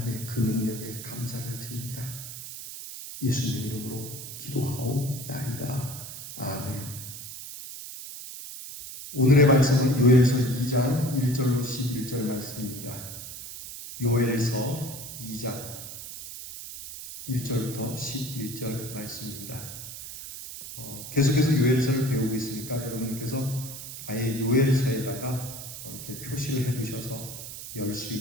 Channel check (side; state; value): right; noise; hiss, 10 dB below the sound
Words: 그 능력에 감사를 드립니다. 예수님 이름으로 기도하옵나이다. 아멘. 오늘의 말씀은 요엘서 2장 1절로 11절 말씀입니다. 요엘서 2장 1절부터 11절 말씀입니다. 계속해서 요엘서를 배우고 있으니까 여러분께서 아예 요엘서에다가 이렇게 표시를 해두셔서 열 수